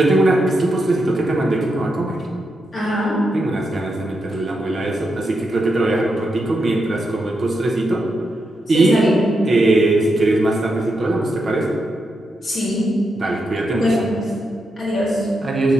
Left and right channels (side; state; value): both; normal; correlation 0.84